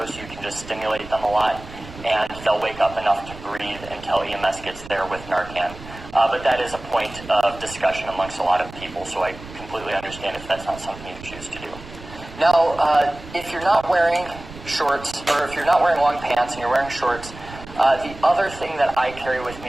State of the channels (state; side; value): noise; right; rumble, 16 dB below the sound